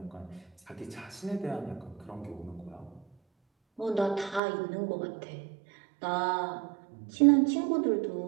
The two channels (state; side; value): drops out; left; at 4.4 s